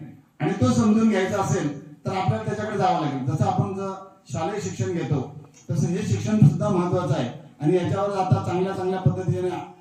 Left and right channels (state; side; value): identical; both; correlation 1.00